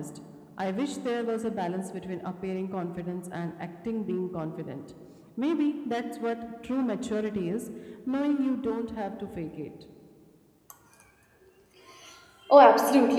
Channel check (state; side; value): identical; both; correlation 1.00